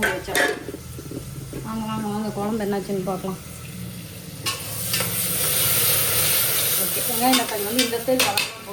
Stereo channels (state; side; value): identical; both; correlation 1.00